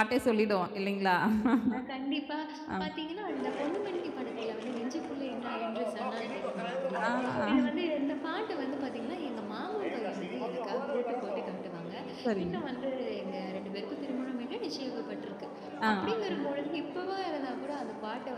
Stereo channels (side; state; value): both; identical; correlation 1.00